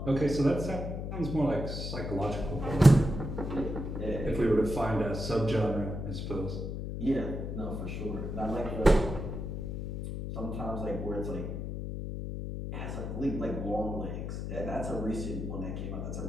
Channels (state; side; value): noise; left; hum, 5 dB below the sound